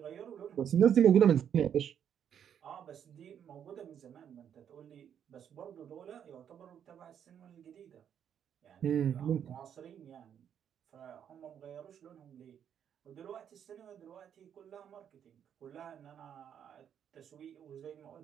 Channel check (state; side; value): quieter; left; 8.8 dB